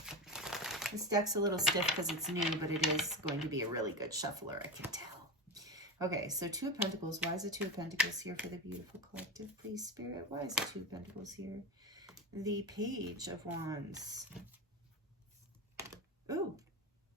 This deck's a little stiff because it's new, but it is going to be a really good shuffler, I can tell. Okay, so Two of Pentacles. Why is the Two of Pentacles here for the beautiful collective, please, Spirit? Why is the Two of Pentacles here? The Page of Wands. Ooh,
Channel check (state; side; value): normal; both; correlation 0.23